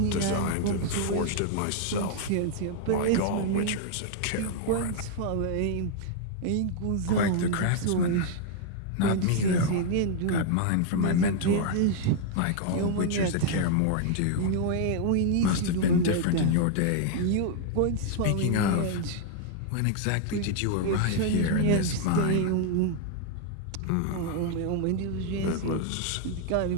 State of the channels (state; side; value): different; both; correlation 0.00